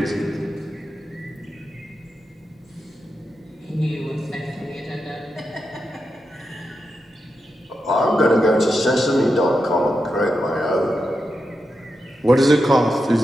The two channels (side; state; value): both; normal; correlation 0.88